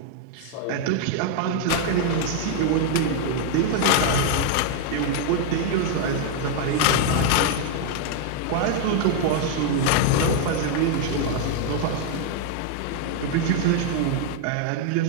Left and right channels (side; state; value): both; different; correlation 0.00